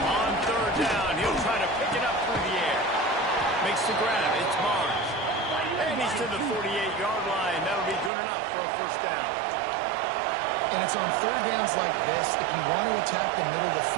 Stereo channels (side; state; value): left; drops out; at 8.1 s